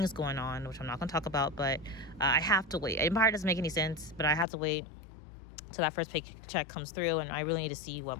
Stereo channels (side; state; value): right; drops out; at 4.5 s